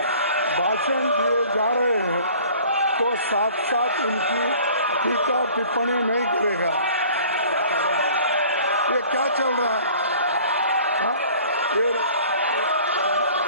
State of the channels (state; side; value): inverted; both; correlation -0.50